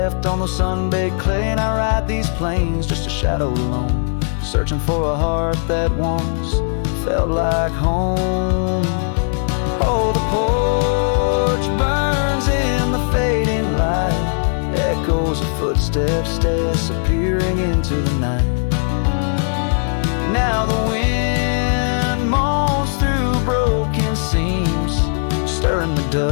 on the sun-baked clay, and I ride these plains just a shadow alone, searching for a heart that once felt like home. Oh, the porch burns in the fading light, echoes of footsteps disappearing into the night. Now the wind moans through broken seams, stirring the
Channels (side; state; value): right; silent; digital silence